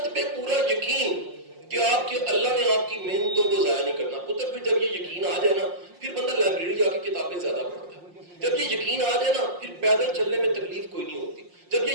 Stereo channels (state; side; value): late; left; 5.6 ms